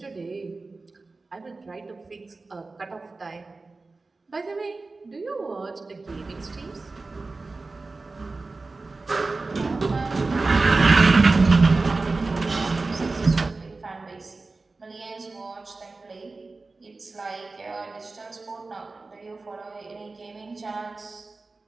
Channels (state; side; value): quieter; left; 3.6 dB